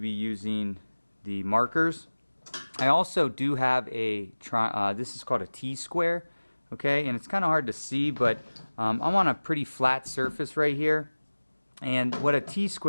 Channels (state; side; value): inverted; both; correlation -1.00